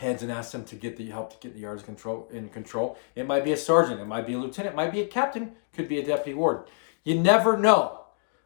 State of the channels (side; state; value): right; silent; digital silence